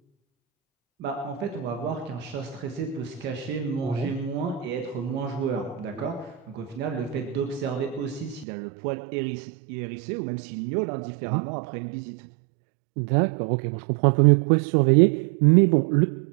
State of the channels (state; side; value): drops out; left; at 8.5 s